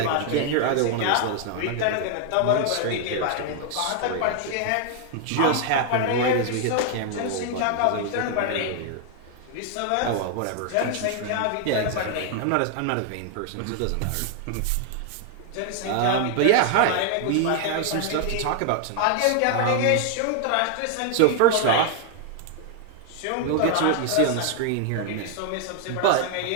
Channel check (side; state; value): both; different; correlation 0.00